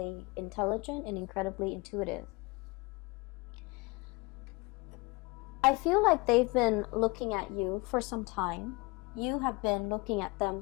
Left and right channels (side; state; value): right; quieter; 25.8 dB